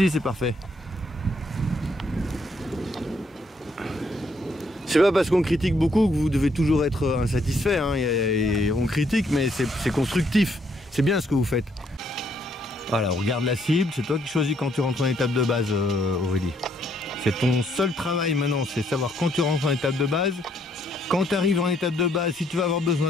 c'est parfait. C'est pas parce qu'on critique beaucoup que vous devez toujours être insatisfait, hein. On critique, mais c'est constructif. C'est bien ce que vous faites. Voilà, on regarde la cible, c'est toi qui choisis quand tu rentres en étape de base, Aurélie. C'est ton seul travail maintenant, c'est savoir quand tu rentres en étape de base, quand tu arrives en étape de base, si tu vas avoir besoin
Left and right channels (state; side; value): normal; both; correlation 0.71